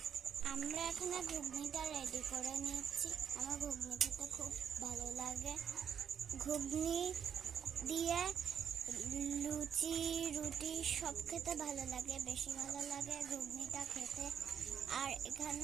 আমরা এখানে ঘুগনিটা রেডি করে নিচ্ছি। আমার ঘুগনি খেতে খুব ভালো লাগে। ঘুগনি দিয়ে লুচি, রুটি সব খেতে ভালো লাগে, বেশি ভালো লাগে ঘুগনিটা খেতে। আর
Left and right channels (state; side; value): quieter; left; 8.0 dB